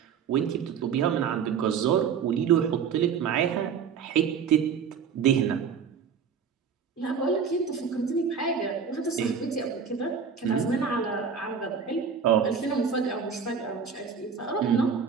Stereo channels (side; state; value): left; quieter; 6.6 dB